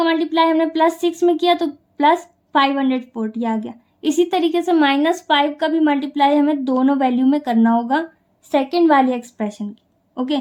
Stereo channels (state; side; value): identical; both; correlation 1.00